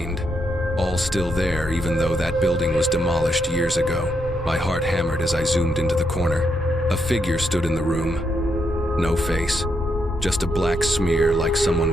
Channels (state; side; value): normal; both; correlation 0.80